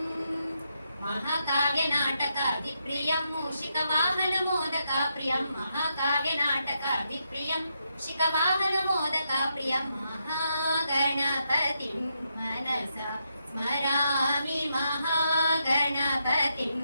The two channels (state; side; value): inverted; both; correlation -0.81